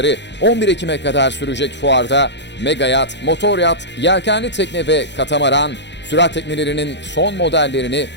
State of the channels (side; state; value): right; late; 0.51 ms